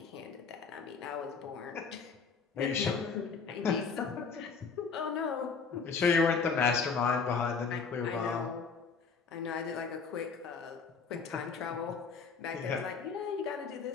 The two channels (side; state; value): right; quieter; 5.3 dB